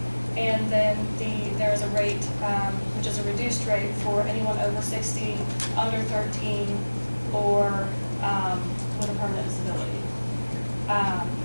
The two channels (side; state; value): both; inverted; correlation -1.00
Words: And then there's a rate which is a reduced rate for anyone over 60, under 13, or with a permanent disability.